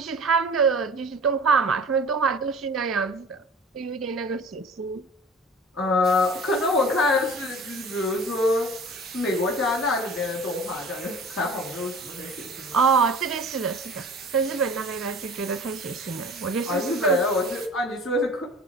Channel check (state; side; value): normal; both; correlation 0.43